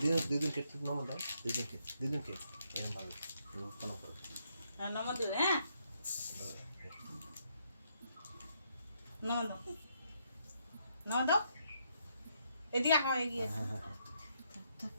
দুদিনকে একটু প্রণাম দাও দুদিনকে এরকম ভাবে প্রণাম করো নমদ দিলে হ্যাঁ নমদ নমদ এদিকে আও এগিয়ে হ্যাঁ হ্যাঁ হ্যাঁ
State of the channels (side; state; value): both; inverted; correlation -0.75